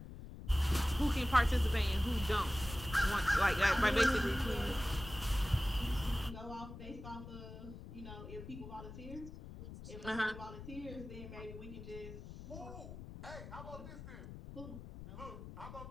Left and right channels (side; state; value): left; noise; rumble, 12 dB below the sound